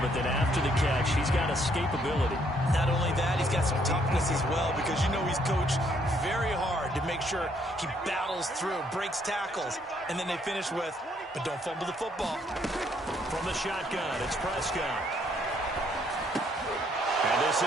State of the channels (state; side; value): normal; both; correlation 0.69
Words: then after the catch, he's got escapability. Not only that, he's got some toughness as well, because you know he's coached very hard to make sure he battles through, breaks tackles, and then they finish with, but don't fumble the football. From the shotgun, it's Prescott. And this